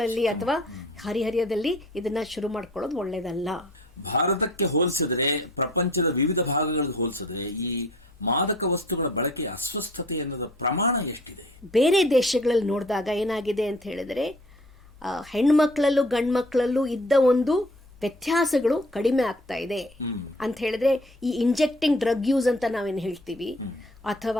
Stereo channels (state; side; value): normal; both; correlation 0.51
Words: ಅಥವಾ ಹರಿಹರಿಯದಲ್ಲಿ ಇದನ್ನ ಶುರು ಮಾಡ್ಕೊಳ್ಳೋದು ಒಳ್ಳೇದಲ್ಲ. ಭಾರತಕ್ಕೆ ಹೋಲಿಸಿದ್ರೆ, ಪ್ರಪಂಚದ ವಿವಿಧ ಭಾಗಗಳಿಗೆ ಹೋಲಿಸಿದ್ರೆ ಈ ಮಾದಕ ವಸ್ತುಗಳ ಬಳಕೆ ಅಸ್ವಸ್ಥತೆ ಅನ್ನೋದ ಪ್ರಮಾಣ ಎಷ್ಟಿದೆ? ಬೇರೆ ದೇಶಗಳಲ್ಲಿ ನೋಡಿದಾಗ ಏನಾಗಿದೆ ಅಂತ ಹೇಳಿದ್ರೆ, ಹೆಣ್ಮಕ್ಳಲ್ಲೂ ಗಂಡು ಮಕ್ಕಳಲ್ಲೂ ಇದ್ದ ಒಂದು ವ್ಯತ್ಯಾಸಗಳು ಕಡಿಮೆ ಆಗ್ತಾ ಇದೆ ಅಂತ ಹೇಳಿದ್ರೆ, ಈ ಇಂಜೆಕ್ಟಿಂಗ್ ಡ್ರಗ್ ಯೂಸ್ ಅಂತ ನಾವೇನು ಹೇಳ್ತೀವಿ,